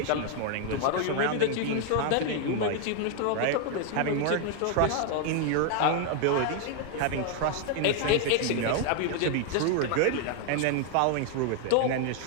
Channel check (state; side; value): different; both; correlation 0.00